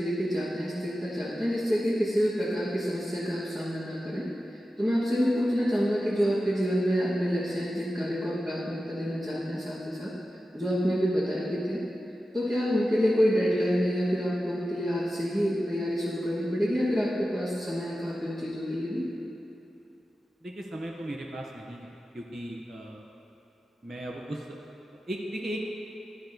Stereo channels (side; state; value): both; normal; correlation 0.93